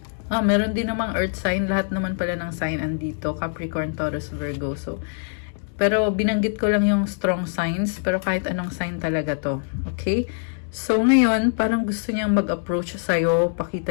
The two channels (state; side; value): silent; right; digital silence